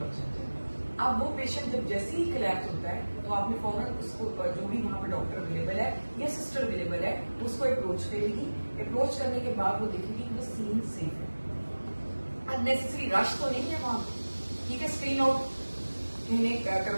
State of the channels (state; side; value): inverted; both; correlation -1.00